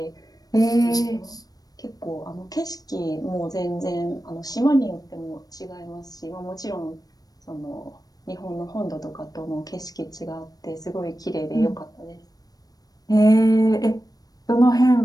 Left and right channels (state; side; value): late; right; 0.18 ms